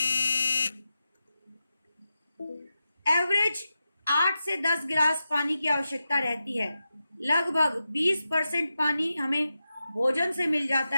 एवरेज 8 से 10 गिलास पानी की आवश्यकता रहती है। लगभग 20% पानी हमें भोजन से मिल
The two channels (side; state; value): both; inverted; correlation -0.91